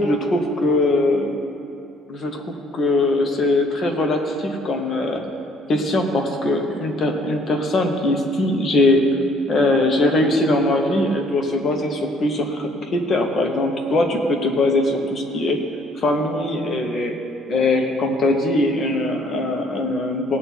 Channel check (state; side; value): normal; both; correlation 0.61